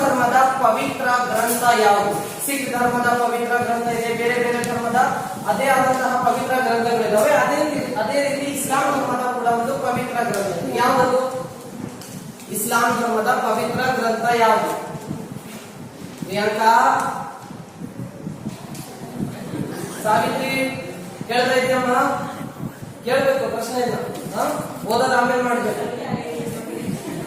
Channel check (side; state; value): both; identical; correlation 1.00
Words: ಧರ್ಮದ ಪವಿತ್ರ ಗ್ರಂಥ ಯಾವುದು? ಸಿಖ್ ಧರ್ಮದ ಪವಿತ್ರ ಗ್ರಂಥ ಇದೆ, ಬೇರೆ ಬೇರೆ ಧರ್ಮದ ಅದೇ ಆದಂತಹ ಪವಿತ್ರ ಗ್ರಂಥಗಳಿದಾವೆ. ಅದೇ ರೀತಿ ಇಸ್ಲಾಂ ಧರ್ಮದ ಕೂಡ ಒಂದು ಪವಿತ್ರ ಗ್ರಂಥ ಇದೆ. ಯಾವುದು ಇಸ್ಲಾಂ ಧರ್ಮದ ಪವಿತ್ರ ಗ್ರಂಥ ಯಾವುದು? ಪ್ರಿಯಾಂಕಾ, ಸಾವಿತ್ರಿ ಕೇಳ್ತಾ ಇದೆಯಮ್ಮ? ಕೇಳ್ಬೇಕು, ಪ್ರಶ್ನೆ ಇಲ್ಲ. ಓದೋದು ಆಮೇಲೆ ಮಾಡ್ಬೇಕು.